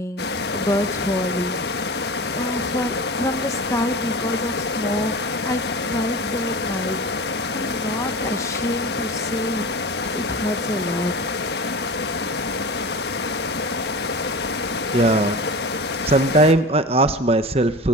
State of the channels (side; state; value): both; normal; correlation 0.32